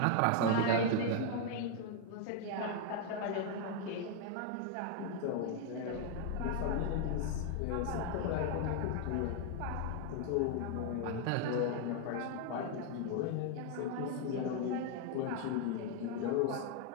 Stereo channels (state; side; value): different; both; correlation 0.00